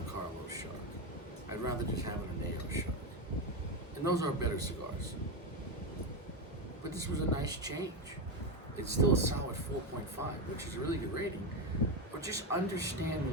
Carlos Shark. I'd rather just have an Añejo Shark. And those are better cigars. But this was a nice change. It's still a solid 4.5, which is a really good rating. But just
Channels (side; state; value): both; normal; correlation 0.11